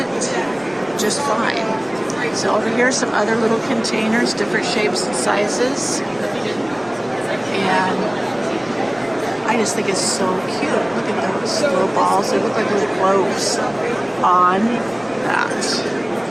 just fine. So over here are some other little containers, different shapes and sizes. And I just think it's so cute. Look at those little balls. They look like little globes on that.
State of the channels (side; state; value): left; noise; rumble, 28 dB below the sound